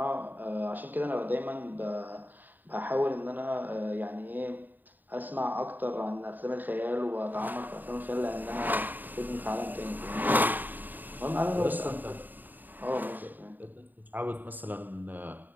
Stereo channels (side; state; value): left; late; 0.088 ms